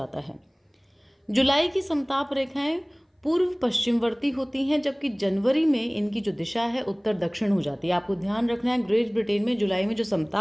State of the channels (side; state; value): both; identical; correlation 1.00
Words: है। जुलाई की समताप रेखाएं पूर्व पश्चिमवर्ती होती हैं, जबकि जनवरी में इनकी जो दिशा है उत्तर दक्षिण हो जाती है। आपको ध्यान रखना है, ग्रेट ब्रिटेन में जुलाई में जो